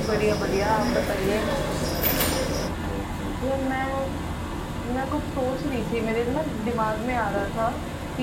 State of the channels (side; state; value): both; identical; correlation 1.00